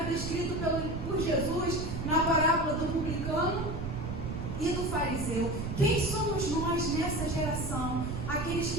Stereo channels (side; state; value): right; noise; rumble, 5 dB below the sound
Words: descrito por Jesus na parábola do publicano e do fariseu? Quem somos nós nessa geração? Aqueles